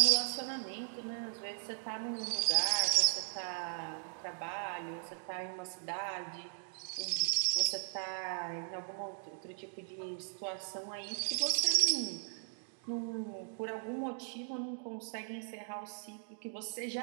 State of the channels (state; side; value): silent; left; digital silence